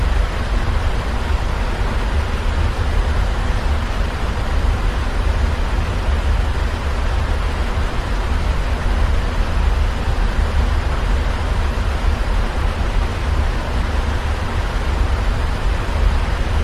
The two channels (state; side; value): identical; both; correlation 1.00